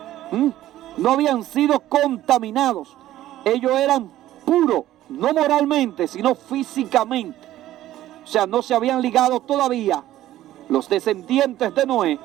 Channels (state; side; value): quieter; left; 13.9 dB